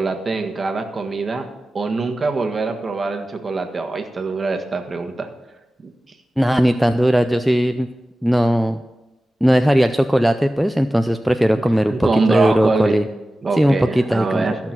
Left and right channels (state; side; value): normal; both; correlation 0.95